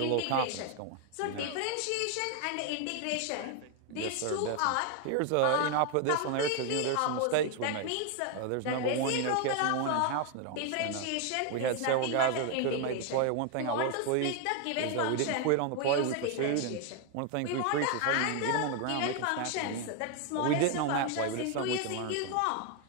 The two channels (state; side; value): different; both; correlation 0.01